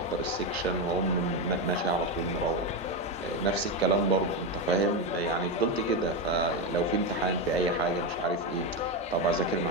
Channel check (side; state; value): both; normal; correlation 0.11